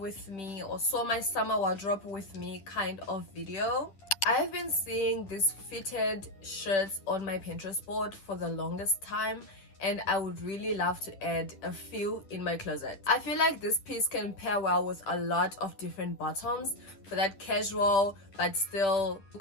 me or sew my summer wardrobe with me kind of video. I have been seeing these fitted shirts on my Pinterest board for the longest time, and I would really love to add a few in my closet. I feel like this piece can pair well with a lot of different bottoms for that casual but still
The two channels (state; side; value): late; right; 10 ms